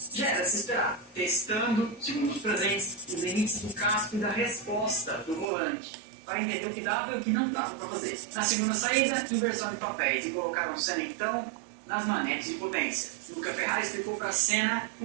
já era se esperar, testando, segundo os presentes, os limites do casco e da resposta do volante, para entender o que dava e o que não dava para fazer. Na segunda saída, inversão de papéis, e colocaram Senna então nas manetes de potência. Luca Ferrari explicou para Senna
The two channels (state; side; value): drops out; left; at 5.5 s